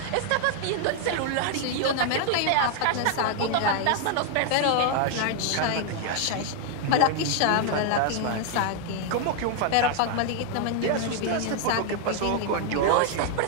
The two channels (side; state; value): both; different; correlation 0.00